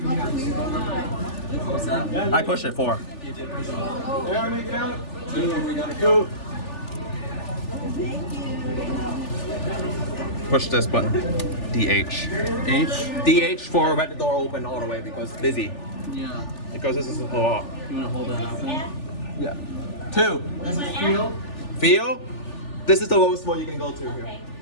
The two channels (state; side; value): late; right; 3.4 ms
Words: I push it 4. Push this button. DH. H. DH for let the door open all the way because it's busy. Yeah. Because this is a lot. You want to hold that up then? Yeah. 2. This is feel. Feel? This is the lowest one you can go to here. Okay,